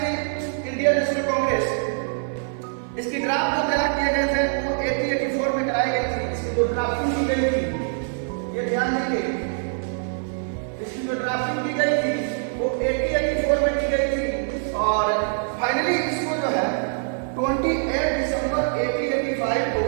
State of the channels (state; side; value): silent; left; digital silence